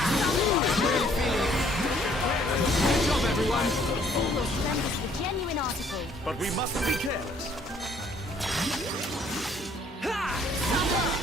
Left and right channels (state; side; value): normal; both; correlation 0.62